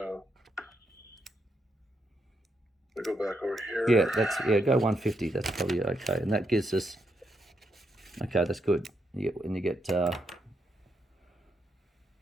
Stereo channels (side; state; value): both; normal; correlation 0.80